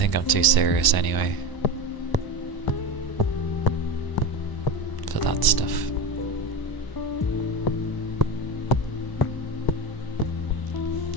I'm too serious anyway for that stuff.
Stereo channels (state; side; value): late; right; 1.0 ms